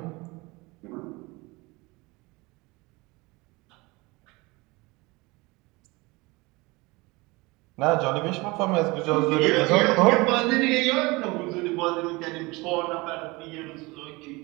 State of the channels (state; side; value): quieter; left; 24.0 dB